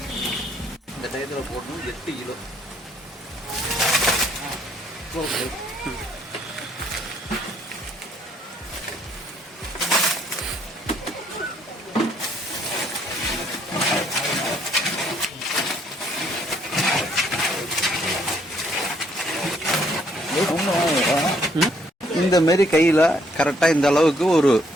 டயத்தில் போடணும். 8 கிலோ இந்த மாரி கையில் கரெக்டாக இந்த அளவுக்கு ஒரு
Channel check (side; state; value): both; normal; correlation 0.67